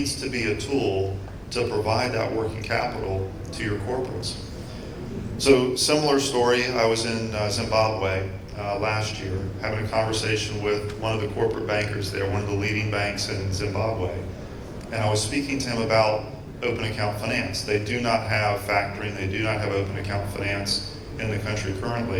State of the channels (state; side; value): identical; both; correlation 1.00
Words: to be a tool to provide that working capital to your corporates. So similar story, I was in Zimbabwe last year, having a conversation with one of the corporate bankers there, one of the leading banks in Zimbabwe. And I was speaking to him about open account finance. They do not have factoring, they do not have open account finance in the country